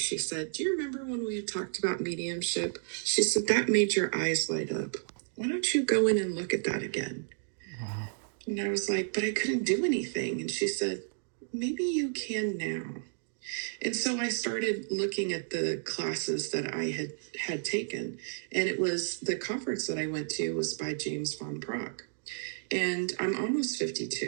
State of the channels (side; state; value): left; silent; digital silence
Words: said, do you remember when we had talked about mediumship? She said, that made your eyes light up. Why don't you go in and look at that again? Wow. And I was like, but I couldn't do anything. And she said, maybe you can now. And so I started looking at the classes that I had taken. And it was the conference that I went to was by James Van Praagh. And I'm almost